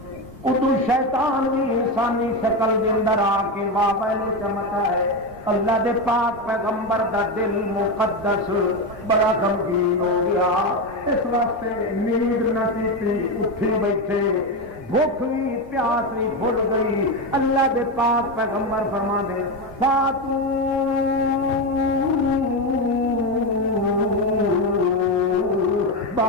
ادو شیطان بھی انسانی شکل دے اندر آ کے مابین چمکا ہے اللہ دے پاک پیغمبر دا دل مقدس بڑا غمگین ہو گیا اس واسطے نیند نہ کیتی اٹھی بیٹھے بھوک بھی پیاس بھی بھول گئی اللہ دے پاک پیغمبر فرما دے فاتو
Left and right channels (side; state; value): both; normal; correlation 0.13